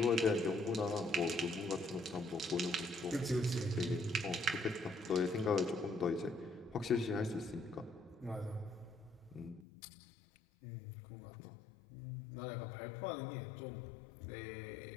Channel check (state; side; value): drops out; right; at 9.7 s